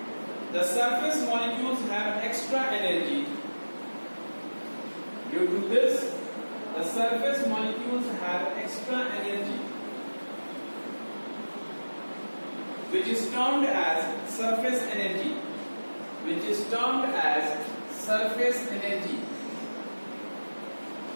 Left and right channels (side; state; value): both; inverted; correlation -1.00